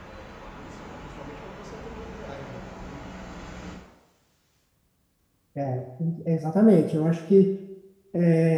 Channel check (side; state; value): both; identical; correlation 1.00